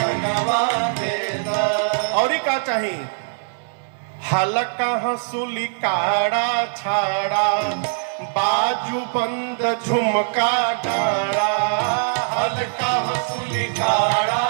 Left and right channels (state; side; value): silent; left; digital silence